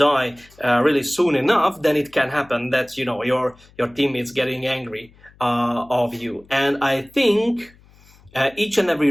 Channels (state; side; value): noise; left; hum, 27 dB below the sound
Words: really soon enough, then it can happen that your teammates getting angry of you. And I think each and every